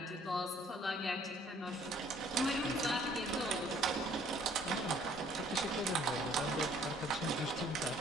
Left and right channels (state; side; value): normal; both; correlation 0.60